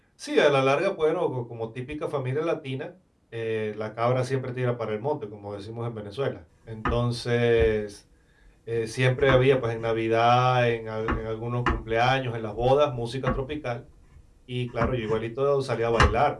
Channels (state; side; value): identical; both; correlation 1.00